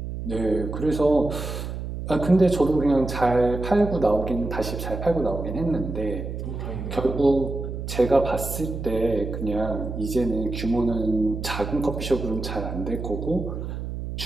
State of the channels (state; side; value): noise; right; hum, 6 dB below the sound